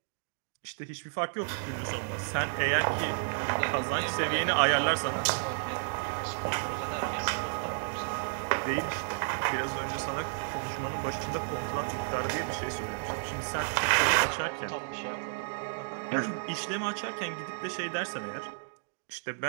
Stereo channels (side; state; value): left; silent; digital silence